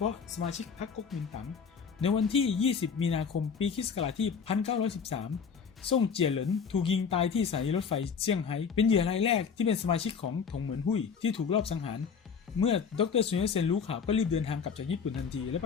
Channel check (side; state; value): right; quieter; 6.3 dB